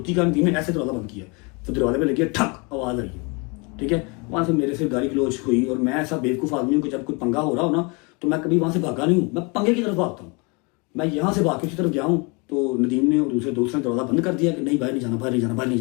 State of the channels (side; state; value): right; quieter; 30.6 dB